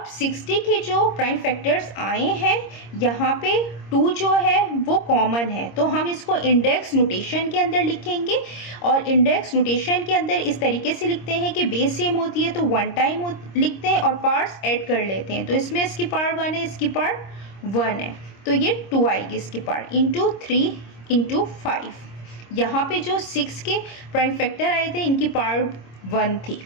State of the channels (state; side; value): late; right; 26 ms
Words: 60 के जो प्राइम फैक्टर्स आए हैं यहाँ पे 2 जो है वो कॉमन है, तो हम इसको इंडेक्स नोटेशन के अंदर लिखेंगे। और इंडेक्स नोटेशन के अंदर इस तरीके से लिखते हैं कि बेस सेम होती है तो 1 टाइम लिखते हैं और पार्ट्स ऐड कर लेते हैं। तो इसमें इसकी पार्ट 1 है, इसकी पार्ट 1 है, तो ये 2 आएगी इसकी पार्ट इंटू 3 इंटू 5। यहाँ पे जो 6 के प्राइम फैक्टर आए थे इनकी पार्ट 1 थी।